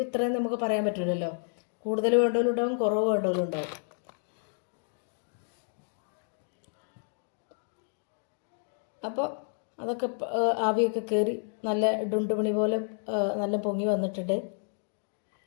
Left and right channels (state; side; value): silent; right; digital silence